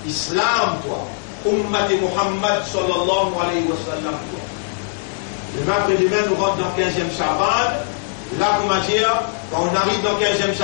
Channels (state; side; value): silent; right; digital silence